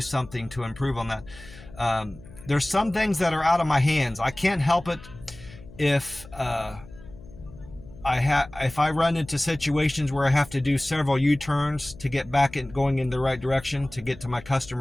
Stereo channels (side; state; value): left; noise; hum, 19 dB below the sound